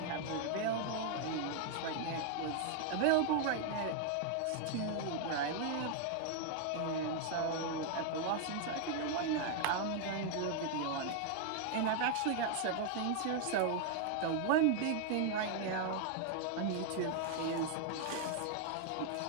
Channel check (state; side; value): different; both; correlation 0.00